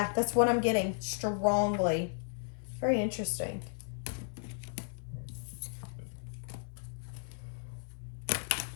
what I'm getting strongly. Very interesting.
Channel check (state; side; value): silent; right; 55 dB below the other